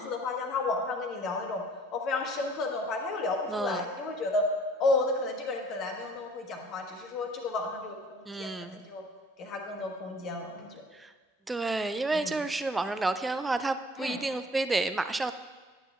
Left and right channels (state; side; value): normal; both; correlation 0.53